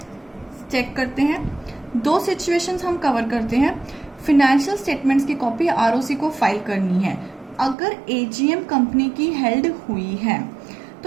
चेक करते हैं, दो सिचुएशंस हम कवर करते हैं। फिनेंशियल स्टेटमेंट्स की कॉपी आरओसी को फाइल करनी है अगर एजीएम कंपनी की हेल्ड हुई है,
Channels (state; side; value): drops out; left; at 7.8 s